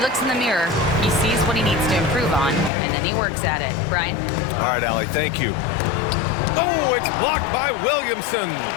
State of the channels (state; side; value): drops out; right; at 2.7 s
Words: in the mirror, he sees what he needs to improve on, and then he works at it. Brian? All right, Allie, thank you. Oh, it's blocked by Williamson.